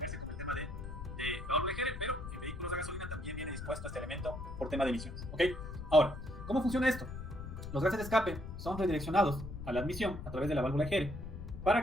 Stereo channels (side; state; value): left; noise; rumble, 9 dB below the sound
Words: con el tema de válvula EGR, pero en vehículos de gasolina también viene dispuesto este elemento por tema de emisiones, ¿ok? Ahora, ¿cómo funciona esto? Los gases de escape son redireccionados a la admisión a través de la válvula EGR para